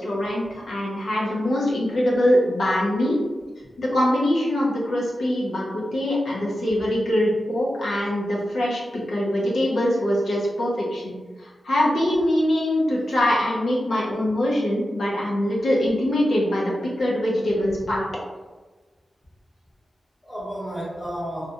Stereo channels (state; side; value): normal; both; correlation 0.91